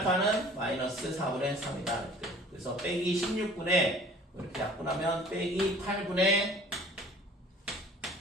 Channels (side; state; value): both; normal; correlation 0.50